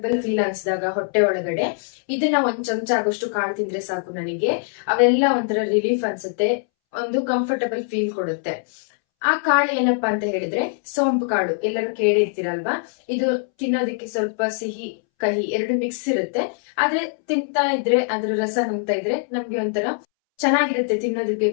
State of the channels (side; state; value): right; silent; 64 dB below the other